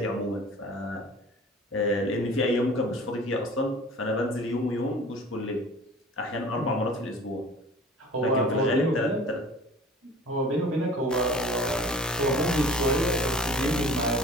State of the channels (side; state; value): both; normal; correlation 0.45